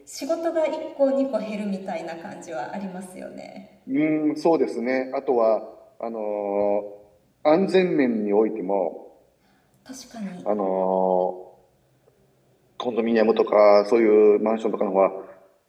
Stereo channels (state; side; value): identical; both; correlation 1.00